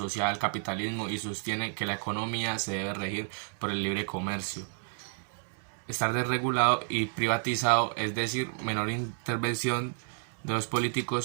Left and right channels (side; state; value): left; silent; 57 dB below the other